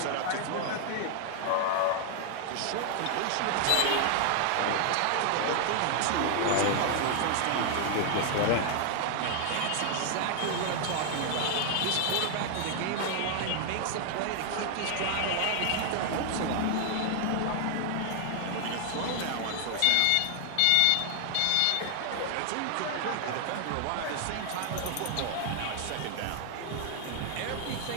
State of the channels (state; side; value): different; both; correlation 0.00